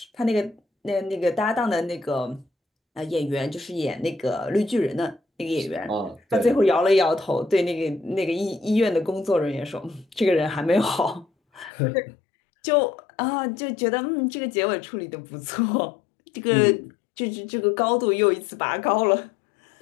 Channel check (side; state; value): right; drops out; at 11.7 s